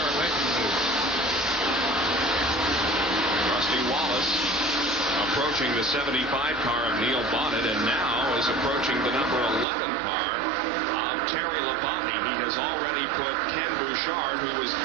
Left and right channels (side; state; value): left; drops out; at 9.7 s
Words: making the move. Rusty Wallace approaching the 75 car of Neil Bonnet, and now is approaching the number 11 car of Terry Labonte. He has already put Ken Bouchard, who was